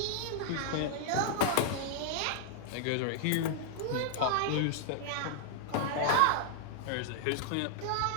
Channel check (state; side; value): different; both; correlation -0.01